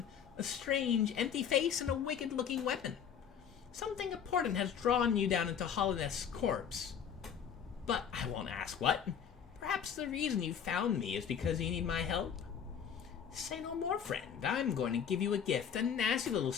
A strange, empty face and a wicked-looking weapon. Something important has drawn you down into Hallownest's corpse. But I won't ask what. Perhaps the reason you found me is because you need my help? Say no more, friend. I'm going to give you a gift, a nasty little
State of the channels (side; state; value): right; quieter; 7.9 dB